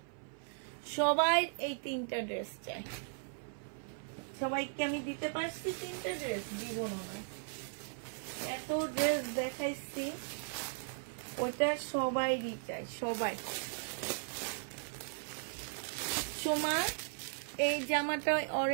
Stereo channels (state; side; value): silent; left; 53 dB below the other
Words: সবাই এই 3টা ড্রেস চায়। সবাইকে আমি দিতে পারছি 3টা ড্রেস, দিব না, এত ড্রেস দেখাইছি, ওটা সবাই চায়, সবাই। সোমা এই জামাটা